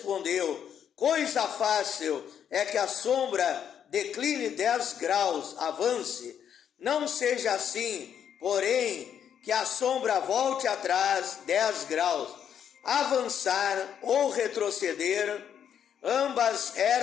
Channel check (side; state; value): right; quieter; 8.7 dB